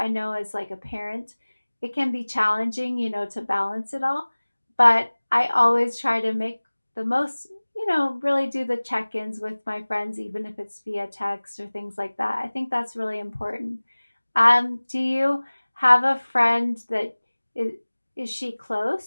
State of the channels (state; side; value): inverted; both; correlation -1.00